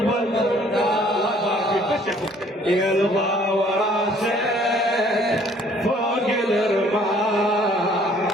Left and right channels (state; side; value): normal; both; correlation 0.59